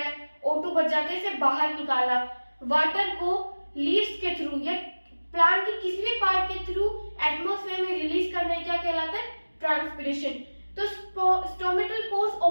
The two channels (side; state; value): both; inverted; correlation -1.00